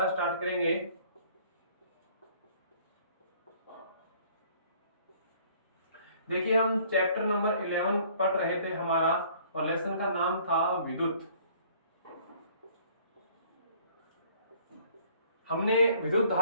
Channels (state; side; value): inverted; both; correlation -0.57